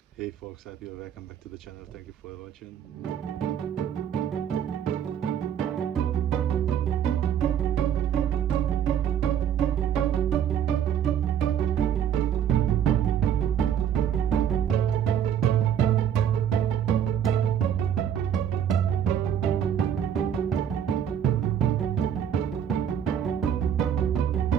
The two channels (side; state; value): left; quieter; 9.1 dB